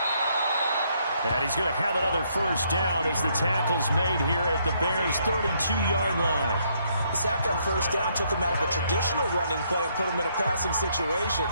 And he's going to have another first down as the tackle's made here at the Bears' 32-yard line. The sack on first down took him out of a traditional running play and put him in a passing situation,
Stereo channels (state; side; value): inverted; both; correlation -0.71